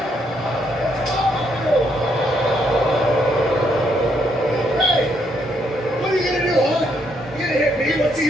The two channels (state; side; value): normal; both; correlation 0.74